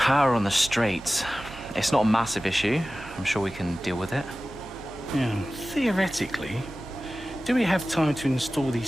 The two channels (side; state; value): both; normal; correlation 0.96